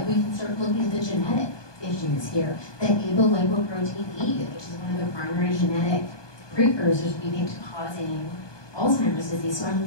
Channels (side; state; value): right; late; 1.2 ms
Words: we can start looking at the genetic issues here. The apolipoprotein E, which is one of the primary genetic precursors, we think, to causing Alzheimer's disease. So I'm